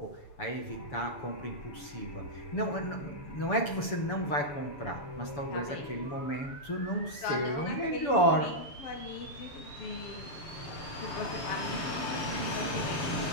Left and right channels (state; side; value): late; right; 7.0 ms